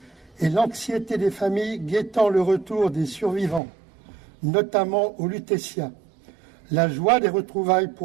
et l'anxiété des familles guettant le retour des survivants, notamment au Lutetia, la joie des retrouvailles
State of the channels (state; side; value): drops out; left; at 3.6 s